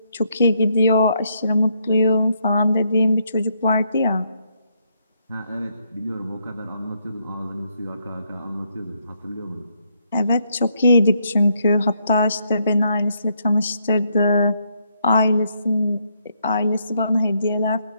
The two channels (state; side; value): inverted; both; correlation -0.75